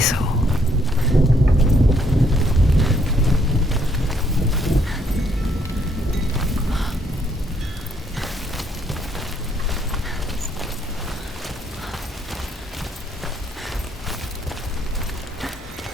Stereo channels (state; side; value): normal; both; correlation 0.70